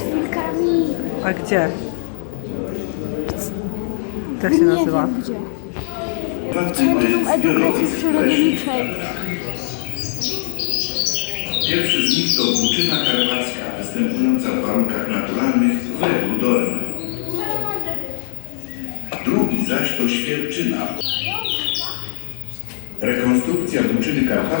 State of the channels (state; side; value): silent; right; 66 dB below the other